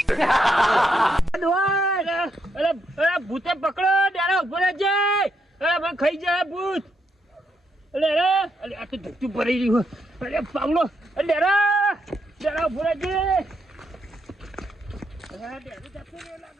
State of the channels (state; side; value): normal; both; correlation 0.79